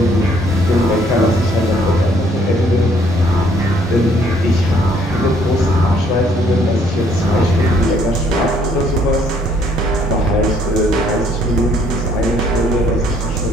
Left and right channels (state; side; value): normal; both; correlation 0.64